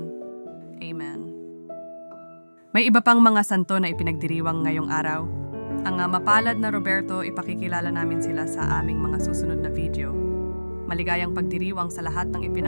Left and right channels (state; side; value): inverted; both; correlation -1.00